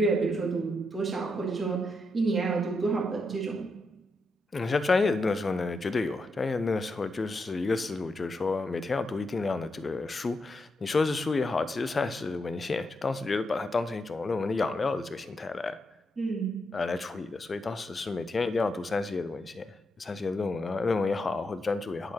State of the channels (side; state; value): both; normal; correlation 0.83